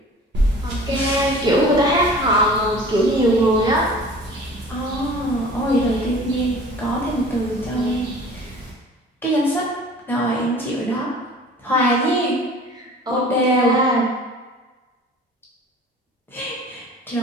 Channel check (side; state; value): both; normal; correlation 0.44